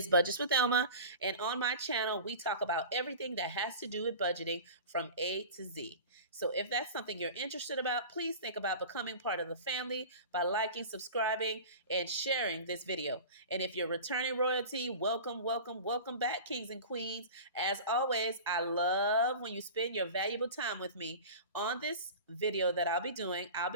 Budgets with Elma, and on my channel, we talk about everything that has to do with budgeting from A to Z. So if that's something you're interested about, please think about becoming part of the family by liking, subscribing, and sharing this video. And if you're returning royalty, welcome, welcome, welcome back, Kings and Queens. As always, I love when you spend your valuable time with me. On this video that I'll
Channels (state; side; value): inverted; both; correlation -0.35